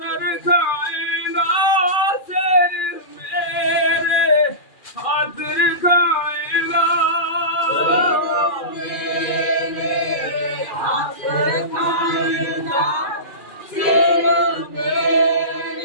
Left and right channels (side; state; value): right; late; 2.4 ms